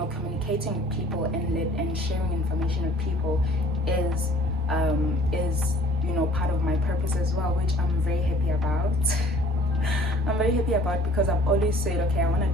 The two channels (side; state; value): both; normal; correlation 0.53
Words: communicating with people and sharing information with people is you know, part of my purpose as well, which I'm very happy about. I'm very happy about, because I've always said, okay, I want